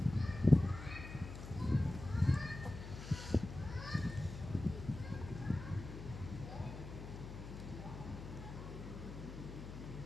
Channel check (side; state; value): left; noise; hum, 10 dB below the sound